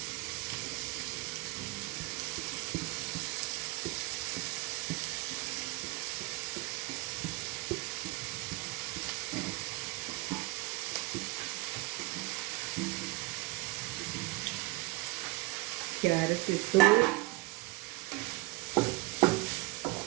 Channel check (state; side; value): quieter; left; 22.2 dB